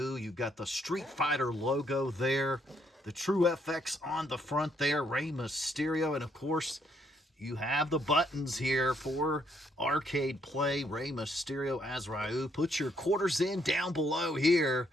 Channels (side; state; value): both; normal; correlation 0.71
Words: You've got the Street Fighter logo there. The True FX on the front there. Rey Mysterio. And of course, you have the buttons here for arcade play. Rey Mysterio as Ryu. Put your quarters in down below here.